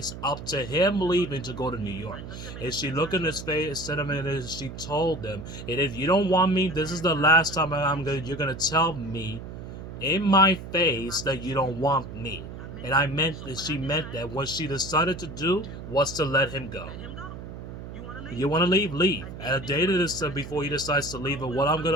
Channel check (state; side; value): noise; right; hum, 11 dB below the sound